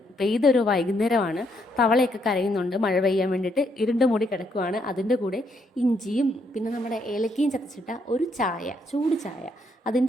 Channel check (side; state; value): both; normal; correlation 0.74